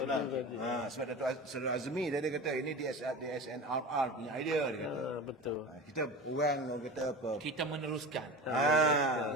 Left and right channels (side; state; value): both; normal; correlation 0.31